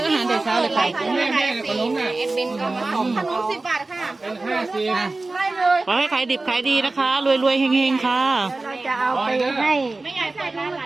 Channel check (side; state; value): left; quieter; 3.3 dB